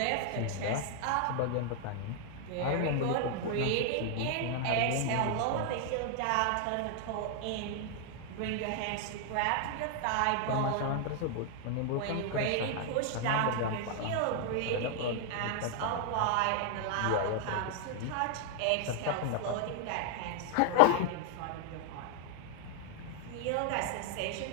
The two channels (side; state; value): both; different; correlation 0.00